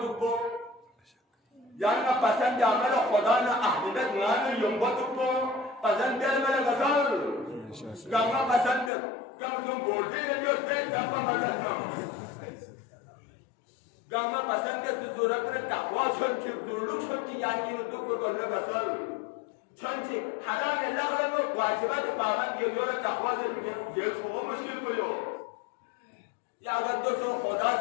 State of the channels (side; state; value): right; drops out; at 8.9 s